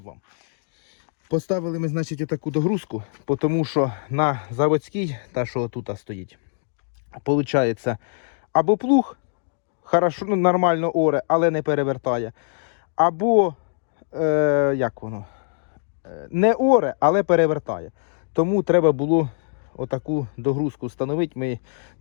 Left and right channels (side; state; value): right; silent; 63 dB below the other